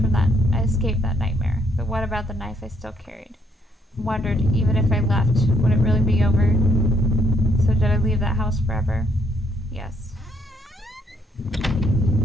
that nightmare. But what about the knife I still carried? I wondered, even if I left, would it really be over? So did I leave that house forever? Yes.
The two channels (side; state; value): both; normal; correlation 0.71